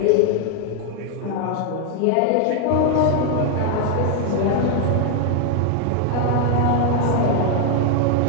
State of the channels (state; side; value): different; both; correlation 0.01